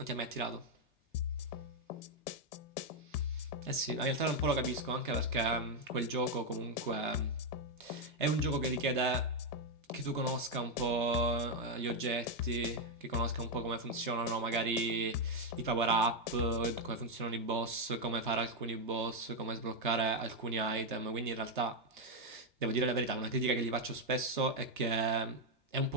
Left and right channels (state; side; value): normal; both; correlation 0.03